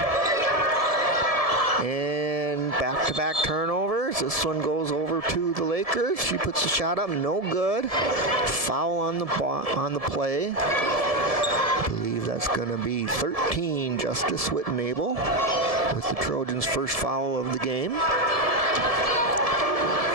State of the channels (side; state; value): left; late; 1.7 ms